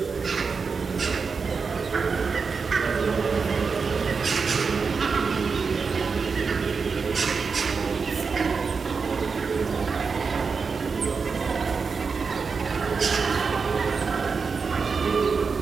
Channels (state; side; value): quieter; left; 5.1 dB